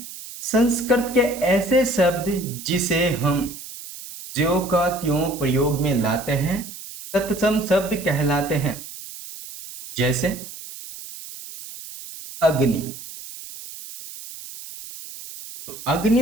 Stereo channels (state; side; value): noise; right; hiss, 13 dB below the sound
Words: संस्कृत के ऐसे शब्द जिसे हम ज्यों का त्यों प्रयोग में लाते हैं तत्सम शब्द कहलाते हैं। जैसे अग्नि, तो